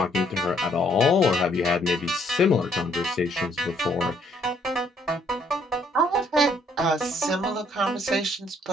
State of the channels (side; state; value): both; normal; correlation 0.67